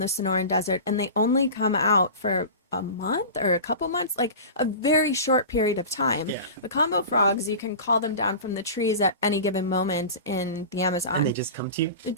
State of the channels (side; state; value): both; inverted; correlation -0.32